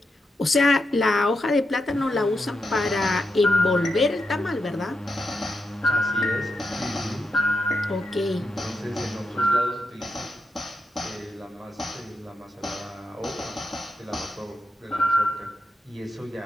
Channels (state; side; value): normal; both; correlation 0.85